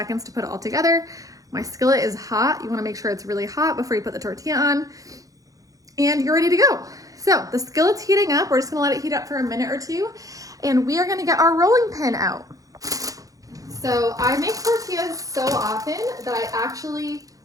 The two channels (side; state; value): left; late; 0.17 ms